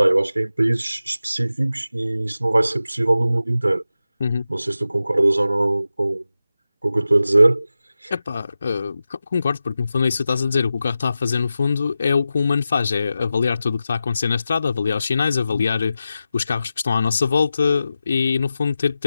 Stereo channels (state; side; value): inverted; both; correlation -0.92